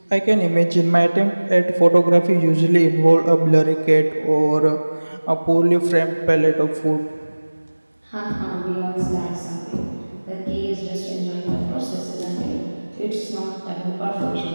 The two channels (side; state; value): both; inverted; correlation -1.00